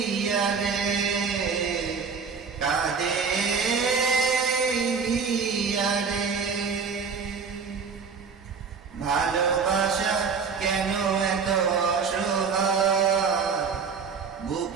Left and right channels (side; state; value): left; quieter; 5.6 dB